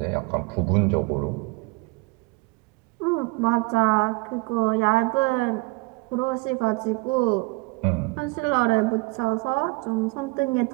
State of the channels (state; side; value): quieter; left; 26.1 dB